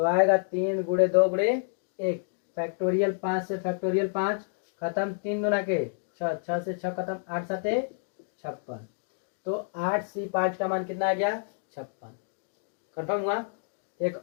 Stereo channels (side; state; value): right; silent; digital silence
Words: आएगा 3 गुणे 2 गुणे 1, फैक्टोरियल 5 से फैक्टोरियल 5 खत्म, 3 दूना के 6, 6 से 6 खत्म, 8 7 56। तो 8C5 का मान कितना आ गया 56। कंफर्म हुआ। एक